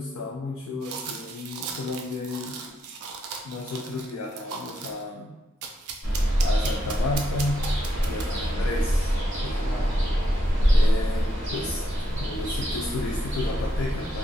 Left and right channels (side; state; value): both; normal; correlation 0.80